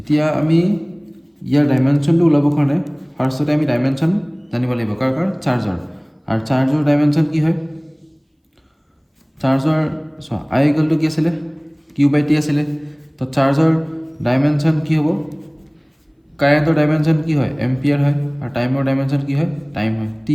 আমি ইয়াৰ ডাইমেনশ্যনটো ওলাবৰ কাৰণে ফাৰ্ষ্টতে আমি ডাইমেনশ্যন জানিব লাগিব। কাৰ চাৰ্জৰ। আৰু চাৰ্জৰ ডাইমেনশ্যন কি হয়? চাৰ্জৰ চোৱা I কি আছিলে? Q/T আছিলে। তো চাৰ্জৰ ডাইমেনশ্যন কি হ'ব? কাৰেণ্টৰ ডাইমেনশ্যন কি হয়? এম্পিয়াৰ হয়। আৰু টাইমৰ ডাইমেনশ্যন কি হয়? টাইম হয়, T।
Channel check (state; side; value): identical; both; correlation 1.00